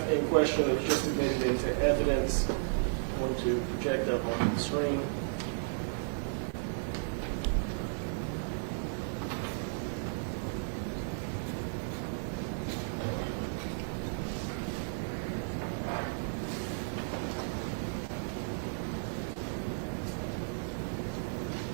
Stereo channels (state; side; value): silent; left; digital silence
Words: in question that was just admitted into evidence, I'm going to project up on the screen.